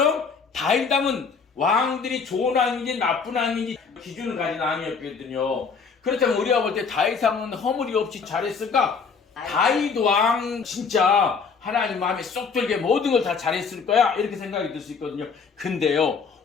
다윗 왕은 왕들이 좋은 왕인지 나쁜 왕인지 기준을 가진 왕이었거든요. 그렇다면 우리가 볼 때 다윗 왕은 허물이 없이 잘했을까? 다윗 왕 진짜 하나님 마음에 쏙 들게 모든 걸 다 잘했을 거야 이렇게 생각이 들 수 있거든요. 근데요,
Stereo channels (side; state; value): right; quieter; 5.4 dB